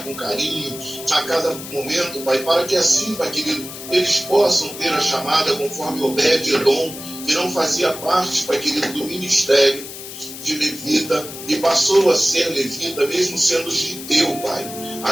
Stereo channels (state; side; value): noise; left; hiss, 12 dB below the sound